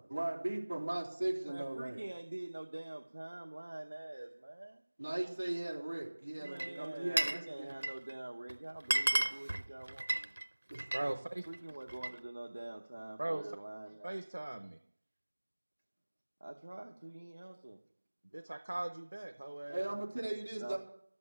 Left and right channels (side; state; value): both; inverted; correlation -1.00